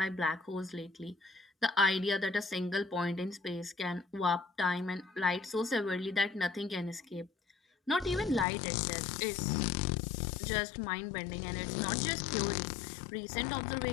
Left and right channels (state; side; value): drops out; right; at 8.5 s